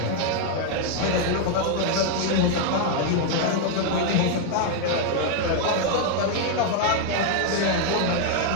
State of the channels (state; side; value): different; both; correlation 0.00